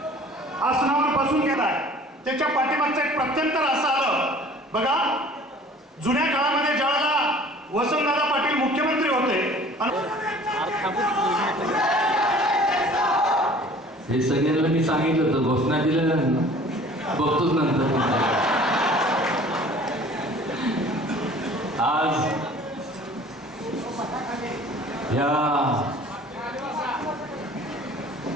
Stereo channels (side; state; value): both; normal; correlation 0.49